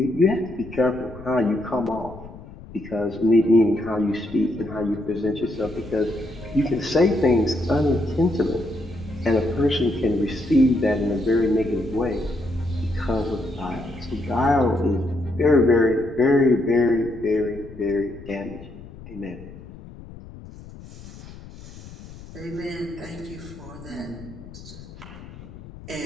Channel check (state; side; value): noise; left; rumble, 16 dB below the sound